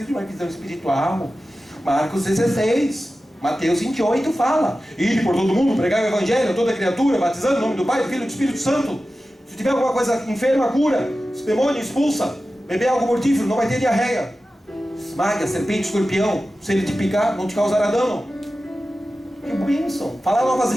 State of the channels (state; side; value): normal; both; correlation 0.94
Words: de uma visão espiritual. Marcos 16, Mateus 28 fala: ide por todo mundo, pregar o evangelho a toda criatura, batizando em nome do Pai, do Filho e do Espírito Santo. Se tiver alguma coisa enferma, cura. Se demônio, expulsa. Beber algo mortífero, não vai ter diarreia. Esmaga, serpente, escorpião. Se ele te picar, não te causará dano. Que bênção. Falar novas